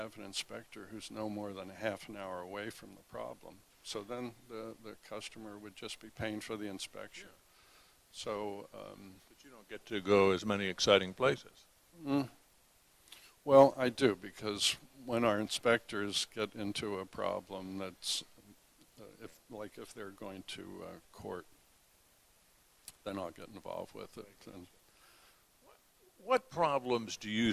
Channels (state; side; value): identical; both; correlation 1.00